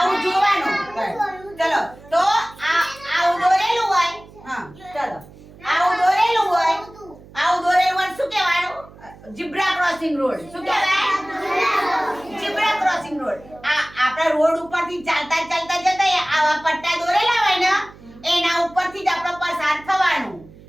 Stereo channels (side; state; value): right; noise; hum, 21 dB below the sound